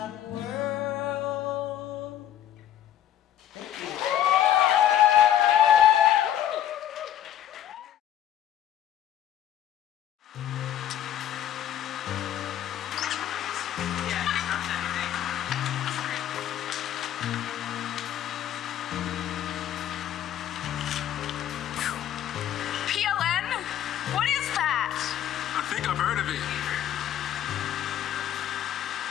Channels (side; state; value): right; quieter; 11.1 dB